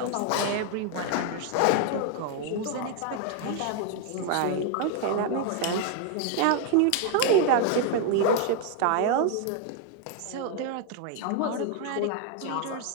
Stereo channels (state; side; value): different; both; correlation 0.00